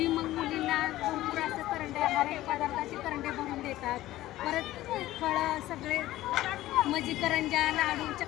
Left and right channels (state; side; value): quieter; right; 15.6 dB